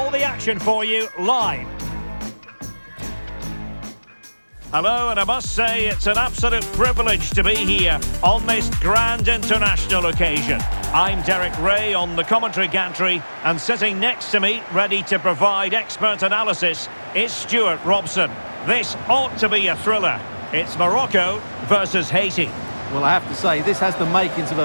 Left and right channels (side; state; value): both; inverted; correlation -1.00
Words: the action for you live. Hello, and I must say it's an absolute privilege to be here on this grand international occasion. I'm Derek Ray on the commentary gantry, and sitting next to me, ready to provide expert analysis, is Stuart Robson. This ought to be a thriller. It's Morocco versus Haiti. Well, I have to say, this has the makings of